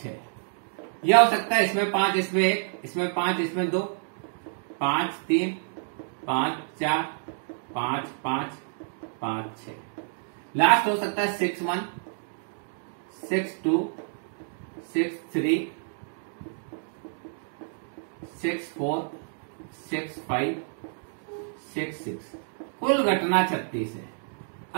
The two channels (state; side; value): silent; left; digital silence